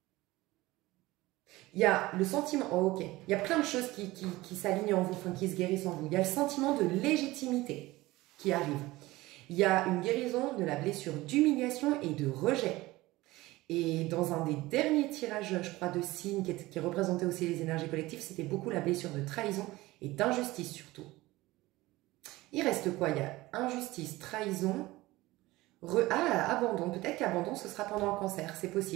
Il y a le sentiment... Oh, ok. Il y a plein de choses qui s'alignent en vous, enfin, qui se guérissent en vous. Il y a le sentiment de légitimité qui arrive. Il y a une guérison de la blessure d'humiliation et de rejet. Et dans un des derniers tirages, je crois, de signes qui représentait aussi les énergies collectives, c'était beaucoup la blessure de trahison et d'injustice surtout. Il reste quoi? Il y a injustice, trahison, abandon. Peut-être qu'abandon, ce sera pendant le cancer. C'est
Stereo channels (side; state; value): left; quieter; 19.2 dB